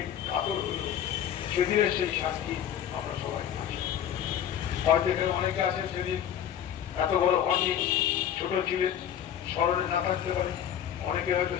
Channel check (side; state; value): right; quieter; 9.9 dB